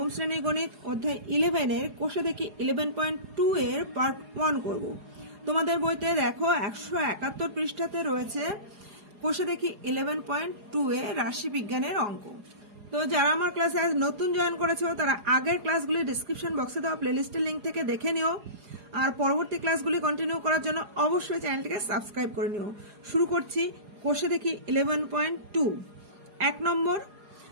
শ্রেণীর গণিত অধ্যায় 11 এর কোষে দেখি 11.2 এর পার্ট 1 করব। তোমাদের বইতে দেখো 171 পৃষ্ঠাতে রয়েছে কোষে দেখি 11.2 এ রাশি বিজ্ঞানের অঙ্ক। তো যারা আমার ক্লাসে আজ নতুন জয়েন করেছো তারা আগের ক্লাসগুলি ডেসক্রিপশন বক্সে দেওয়া প্লেলিস্টের লিংক থেকে দেখে নিও, আর পরবর্তী ক্লাসগুলি কন্টিনিউ করার জন্য অবশ্যই চ্যানেলটিকে সাবস্ক্রাইব করে নিও। শুরু করছি কোষে দেখি 11.2। 1 নম্বর,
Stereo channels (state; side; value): late; left; 4.8 ms